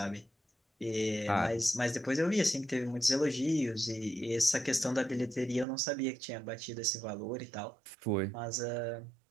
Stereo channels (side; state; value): left; drops out; at 5.7 s